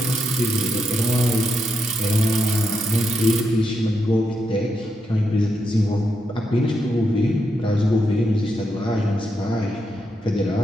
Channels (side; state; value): both; normal; correlation 0.82